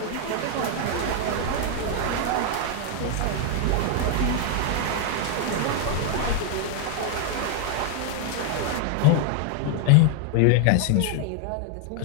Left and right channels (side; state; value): both; different; correlation 0.00